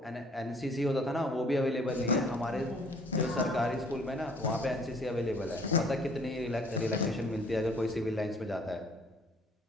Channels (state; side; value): normal; both; correlation 0.57